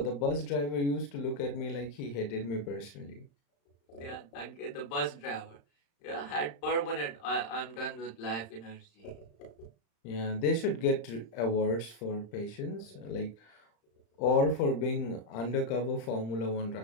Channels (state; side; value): late; right; 35 ms